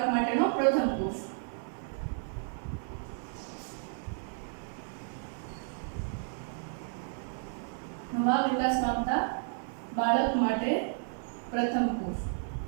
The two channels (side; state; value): left; silent; digital silence